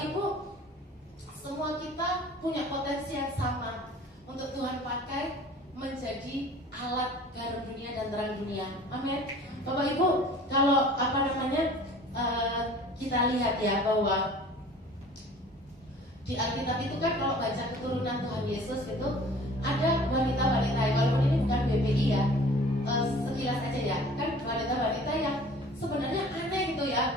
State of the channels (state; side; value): normal; both; correlation 0.47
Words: Ibu, semua kita punya potensi yang sama untuk Tuhan pakai menjadi alat garam dunia dan terang dunia. Amin. Bapak Ibu, kalau kita lihat ya bahwa di Alkitab itu kan kalau baca keturunan Tuhan Yesus itu ada wanita-wanita, walaupun ini bukan BPI ya, sekilas aja ya, kan wanita-wanita yang sebenarnya aneh gitu